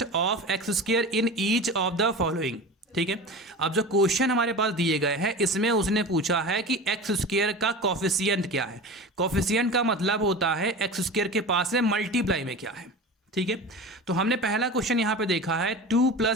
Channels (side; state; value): both; normal; correlation 0.32